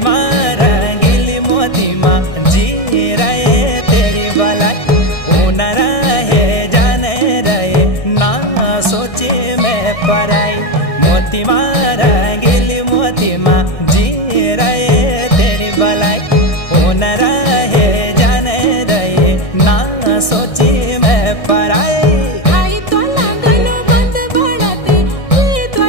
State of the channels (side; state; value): right; late; 1.6 ms